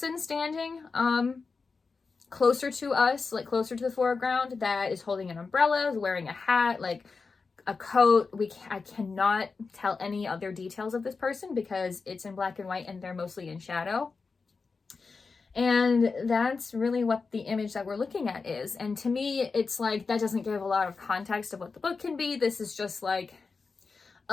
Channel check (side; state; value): right; quieter; 4.6 dB